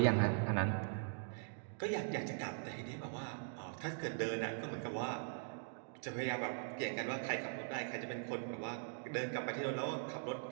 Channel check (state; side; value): silent; left; digital silence